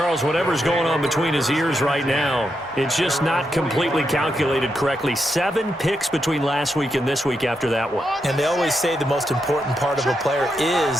whatever's going on between his ears right now, it's just not completely calculated correctly. 7 picks between last week and this week after that one. And they always say the most important part of a player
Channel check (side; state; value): both; normal; correlation 0.83